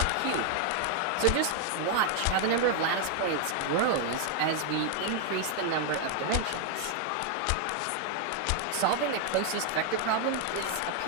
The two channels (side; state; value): both; different; correlation 0.00